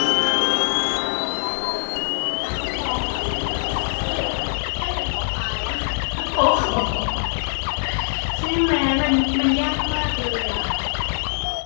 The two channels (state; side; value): silent; right; digital silence